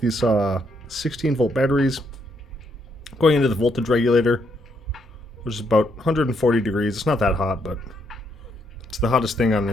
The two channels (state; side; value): normal; both; correlation 0.75